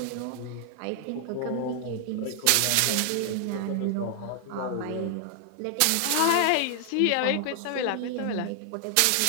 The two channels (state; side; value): different; both; correlation 0.00